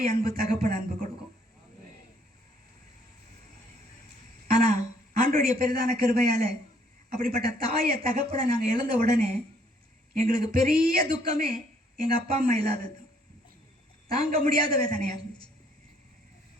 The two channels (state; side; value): normal; both; correlation 0.65